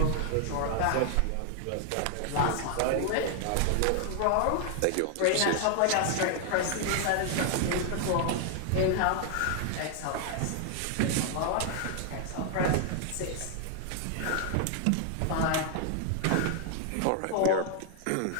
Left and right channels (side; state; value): both; different; correlation 0.00